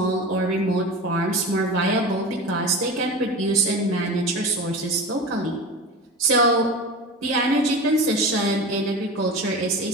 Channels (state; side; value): normal; both; correlation 0.30